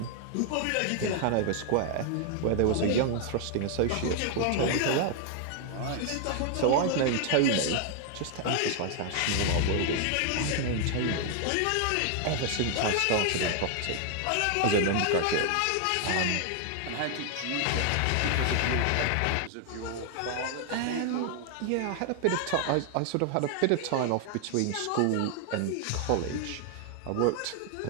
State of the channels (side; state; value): both; different; correlation 0.00